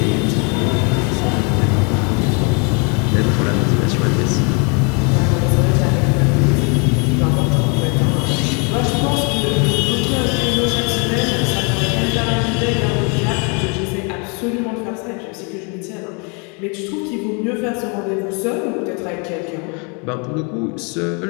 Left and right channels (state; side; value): quieter; right; 34.2 dB